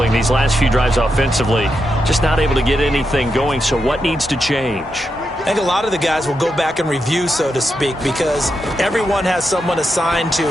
these last few drives offensively. Just not able to get anything going, so what needs to change? I think a lot of the guys will go back and review, so to speak, because everyone has someone assigned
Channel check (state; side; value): normal; both; correlation 0.85